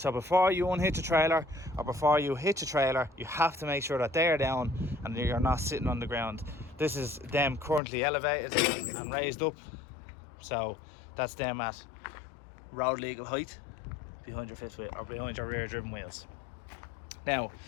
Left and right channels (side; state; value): right; drops out; at 7.8 s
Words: before you unhitch a trailer, or before you hitch a trailer, you have to make sure that they are down and you're not sitting on the ground. This is them currently elevated and raised up. So that's them at road legal height behind your fifth wheel, or behind your rear driven wheels. Now,